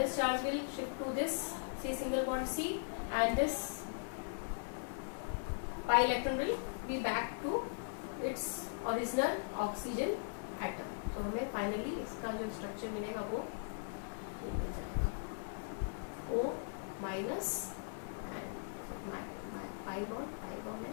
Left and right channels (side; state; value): right; silent; digital silence